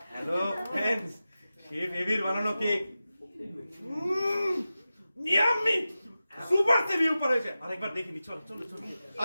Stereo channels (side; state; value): both; inverted; correlation -0.94